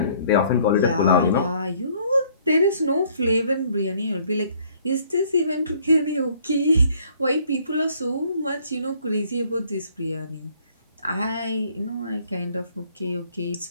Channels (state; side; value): inverted; both; correlation -0.61